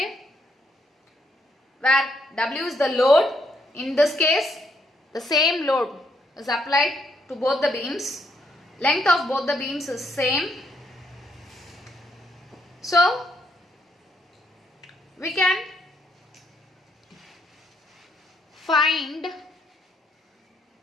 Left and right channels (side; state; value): both; normal; correlation 0.74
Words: where W is the load. In this case, the same load is applied to both the beams. Length of both the beams is same. So, we can find